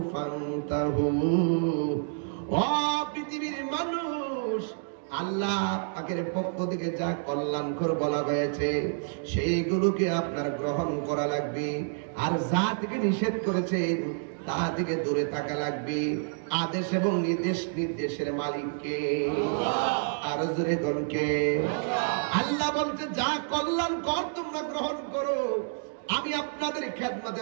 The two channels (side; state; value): left; silent; digital silence